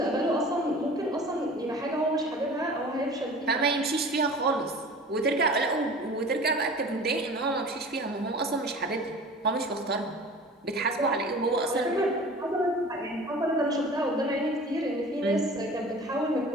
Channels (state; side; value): normal; both; correlation 0.41